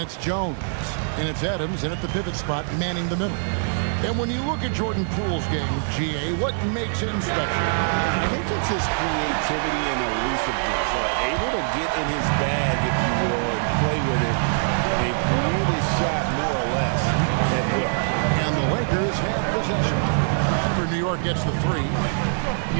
Jones. And it's Adams in at the pivot spot, manning the middle. And when you look at Jordan Poole's game, GA, what makes him special? I think it's his creativity and elusiveness. Able to get in his bag, if you will, and play with it and create his shot more or less. at will. And the Lakers have possession. After New York gets the 3.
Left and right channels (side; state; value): left; silent; digital silence